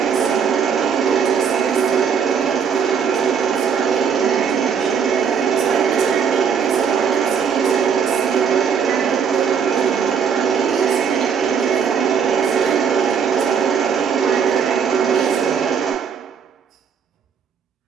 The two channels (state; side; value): quieter; left; 6.9 dB